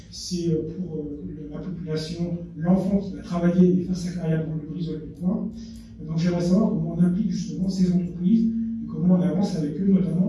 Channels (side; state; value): both; identical; correlation 1.00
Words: c'est pour la population, l'enfant qui va travailler et faire sa carrière dans le Brissol du coin. Donc j'aimerais savoir comment on implique justement ces entreprises et comment on avance avec eux,